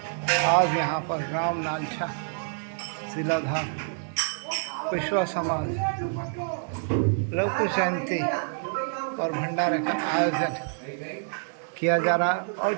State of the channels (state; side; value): silent; left; digital silence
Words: आज यहाँ पर राम नालछा शिलाधार विश्वा समाज लवकुश जयंती और भंडारे का आयोजन किया जा रहा है और